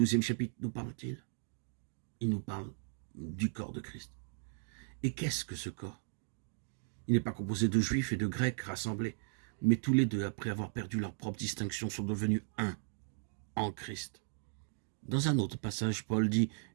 chapitre nous parle-t-il? Il nous parle du corps de Christ. Et qu'est-ce que ce corps? Il n'est pas composé de juifs et de grecs rassemblés, mais tous les deux, après avoir perdu leur propre distinction, sont devenus un en Christ. Dans un autre passage, Paul dit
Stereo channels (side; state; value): left; silent; 53 dB below the other